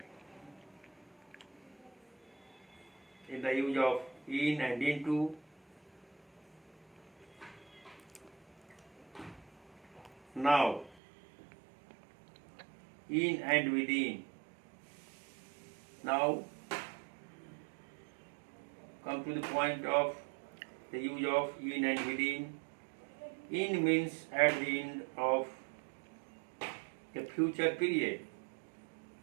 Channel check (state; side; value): drops out; left; at 11.0 s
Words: in the use of in and into. Now, in and within. Now, come to the point of the use of in and within. In means at the end of a future period.